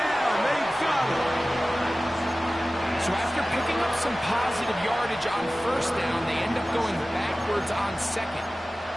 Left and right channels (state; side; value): normal; both; correlation 0.97